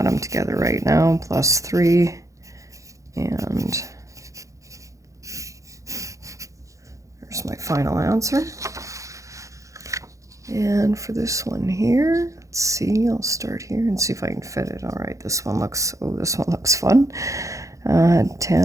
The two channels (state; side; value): late; left; 0.15 ms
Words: them together right now, plus 3, and there's my final answer. And for this one here, let's see, I'll start here and see if I can fit it. All right, this one looks fun.